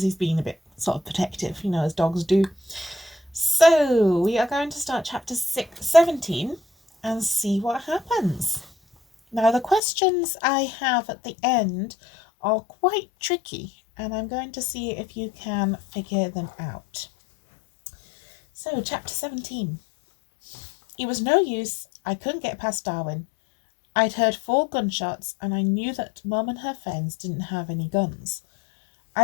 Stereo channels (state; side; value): drops out; right; at 9.8 s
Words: he's being a bit sort of protective, as dogs do. So we are going to start chapter 17 and see what happens. Now, the questions I have at the end are quite tricky, and I'm going to see if you can figure them out. So, chapter 17. It was no use, I couldn't get past Darwin. I'd heard 4 gunshots, and I knew that Mum and her friends didn't have any guns.